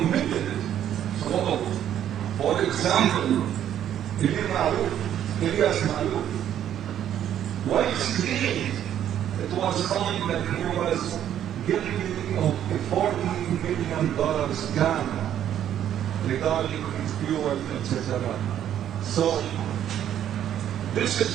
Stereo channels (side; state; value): left; quieter; 10.6 dB